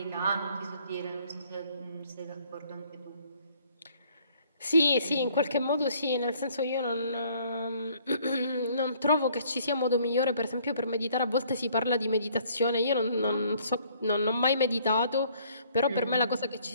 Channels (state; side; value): inverted; both; correlation -0.61